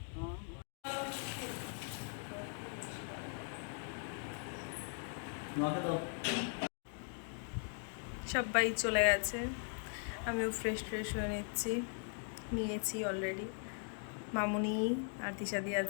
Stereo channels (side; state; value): right; silent; 51 dB below the other